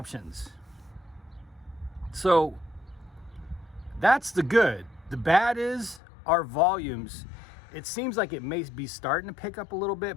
So that's the good. The bad is our volumes it seems like it may be starting to pick up a little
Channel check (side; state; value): right; drops out; at 6.0 s